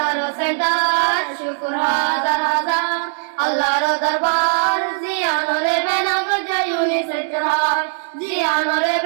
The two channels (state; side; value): silent; left; digital silence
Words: আরো সেন্টার শুকুর হাজার হাজার আল্লাহর দরবার জিয়ানরে বেনা গজে ইউনিসেফ চরহার জিয়ানরে